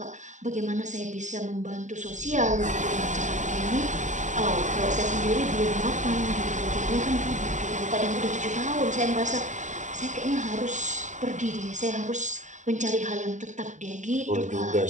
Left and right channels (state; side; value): late; left; 0.35 ms